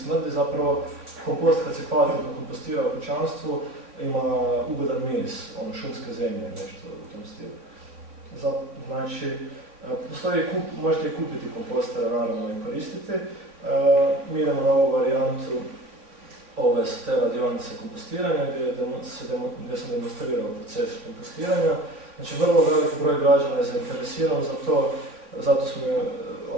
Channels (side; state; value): left; late; 3.4 ms